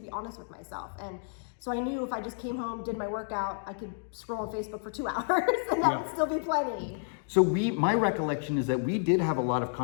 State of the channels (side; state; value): right; silent; digital silence